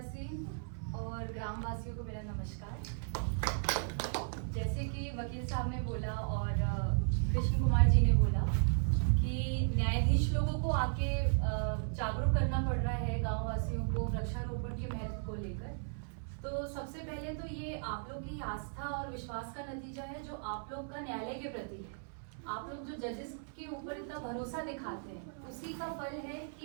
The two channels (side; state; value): left; silent; 54 dB below the other